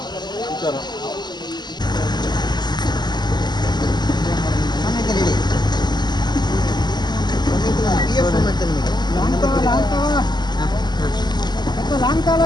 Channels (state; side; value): late; right; 0.21 ms